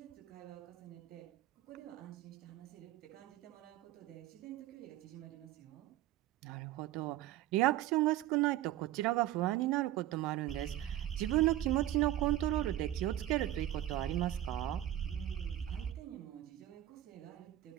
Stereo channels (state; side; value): quieter; left; 13.5 dB